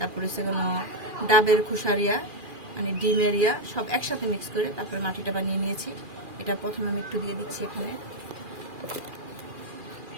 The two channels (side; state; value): left; late; 2.4 ms